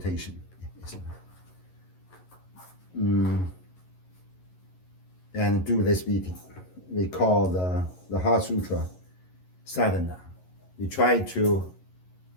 And do this meeting. We call the Heart Sutra sadhana. We try to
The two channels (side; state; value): right; late; 11 ms